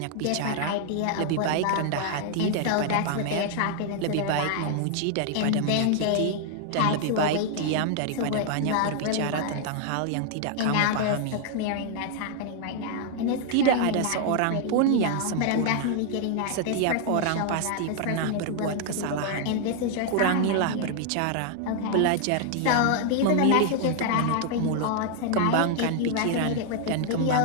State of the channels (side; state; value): both; different; correlation 0.00